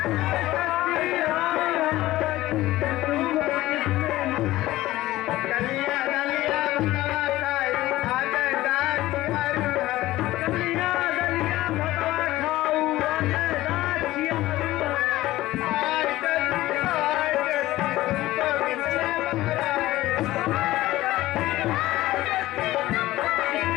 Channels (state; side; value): quieter; right; 16.7 dB